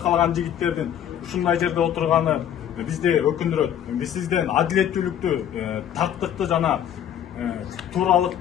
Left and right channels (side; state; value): right; quieter; 9.9 dB